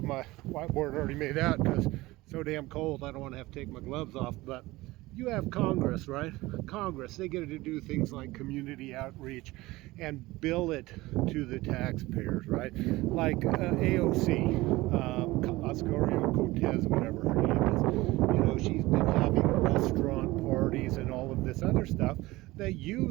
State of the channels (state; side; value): quieter; left; 19.6 dB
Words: my whiteboard already made out because it's so damn cold I don't want to have to take my gloves off. But you have Congress, right? Congress, they get to do things like community outreach and bill it to the taxpayers, right? Like AOC, Ocasio-Cortez, whatever her name is. You know, she's been having restaurant parties and all of this other stuff that